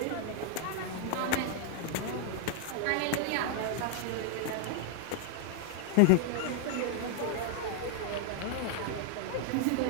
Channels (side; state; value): both; different; correlation 0.00